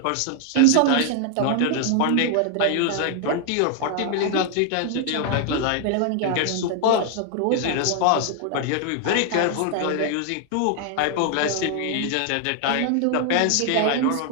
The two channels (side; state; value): both; different; correlation 0.00